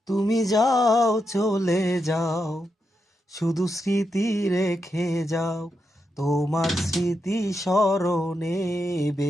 তুমি যাও চলে যাও, শুধু স্মৃতি রেখে যাও। তোমার স্মৃতি স্মরণে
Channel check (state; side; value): normal; both; correlation 0.85